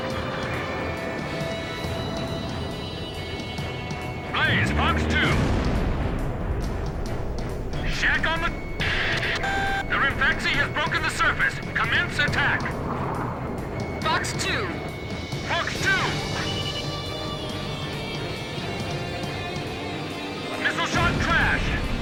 Blaze, Fox 2. Shack on the... The Rimfaxi has broken the surface. Commence attack. Fox 2. Fox 2. Missile shot crash.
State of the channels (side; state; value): both; identical; correlation 1.00